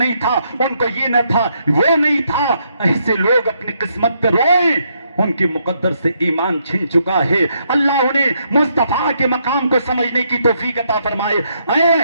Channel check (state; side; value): inverted; both; correlation -0.75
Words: تھا، ان کو یہ نہ تھا، وہ نہیں تھا۔ ایسے لوگ اپنی قسمت پہ روئیں، ان کی مقدر سے ایمان چھن چکا ہے۔ اللہ انہیں مصطفیٰ کے مقام کو سمجھنے کی توفیق عطا فرمائے۔ اے